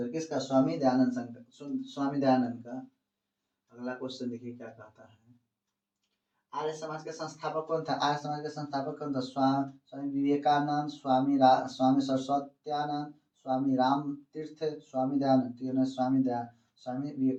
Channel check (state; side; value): identical; both; correlation 1.00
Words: किसका? स्वामी दयानंद शंकर, स्वामी दयानंद का। अगला क्वेश्चन देखिए क्या कहता है, आर्य समाज के संस्थापक कौन था? आर्य समाज के संस्थापक कौन था? स्वामी विवेकानंद, स्वामी सरस्वत्यानंद, स्वामी राम तीर्थ, स्वामी दयानंद। स्वामी